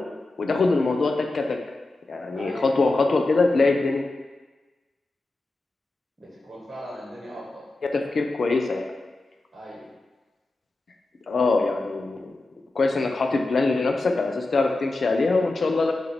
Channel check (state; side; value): quieter; right; 3.0 dB